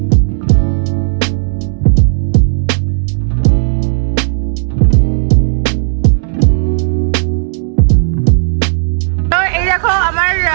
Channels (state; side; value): silent; left; digital silence